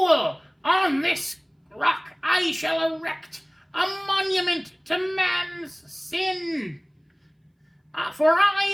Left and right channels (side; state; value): both; identical; correlation 1.00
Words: On this rock I shall erect a monument to man's sin. For